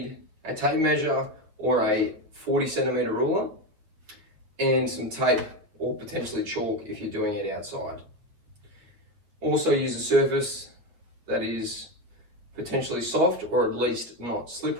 a tape measure or a 40 centimeter ruler and some tape or potentially chalk if you're doing it outside. Also use a surface that is potentially soft or at least not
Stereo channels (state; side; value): late; left; 8.6 ms